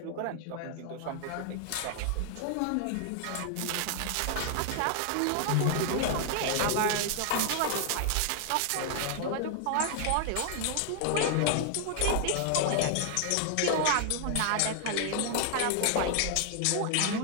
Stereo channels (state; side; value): different; both; correlation 0.00